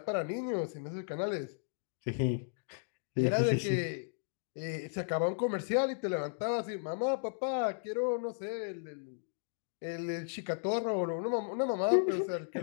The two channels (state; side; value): silent; right; digital silence